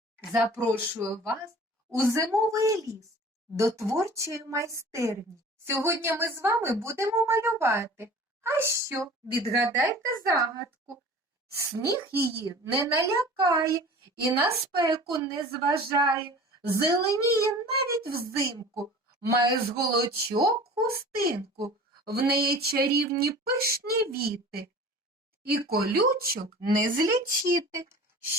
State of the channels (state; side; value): normal; both; correlation 0.42